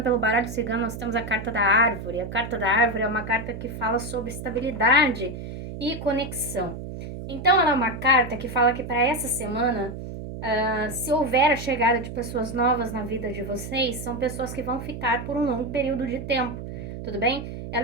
pelo baralho cigano nós temos a carta da árvore. A carta da árvore é uma carta que fala sobre estabilidade e conexão. Então ela é uma carta que fala que para essa semana, se houver a chegada de pessoas novas na vida de vocês, são pessoas que vão ficar por um longo período de tempo, tudo bem?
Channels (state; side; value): noise; right; hum, 9 dB below the sound